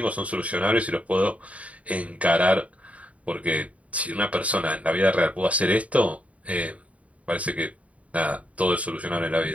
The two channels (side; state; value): left; late; 0.067 ms